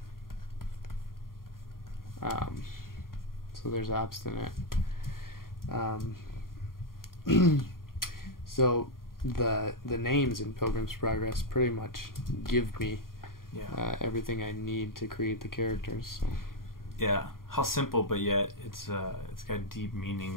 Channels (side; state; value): right; late; 0.91 ms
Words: So there's obstinate. So the names in Pilgrim's Progress pretty much give me everything I need to create the characters. So. Yeah, how simple, but yet it's got deep